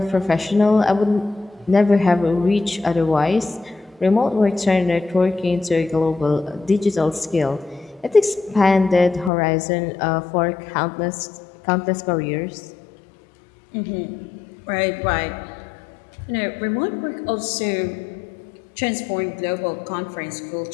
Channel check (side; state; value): right; drops out; at 9.3 s